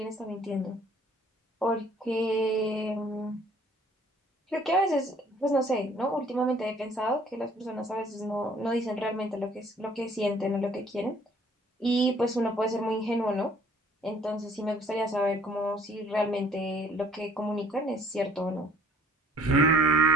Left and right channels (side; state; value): both; normal; correlation 0.57